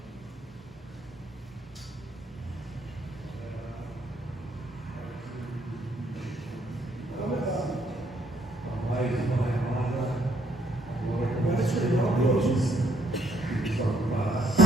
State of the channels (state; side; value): normal; both; correlation 0.70